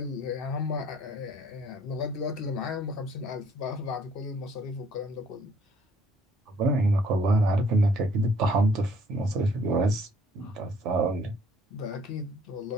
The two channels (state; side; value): normal; both; correlation 0.60